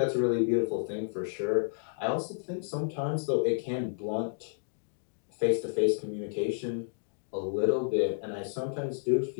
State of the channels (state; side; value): silent; right; digital silence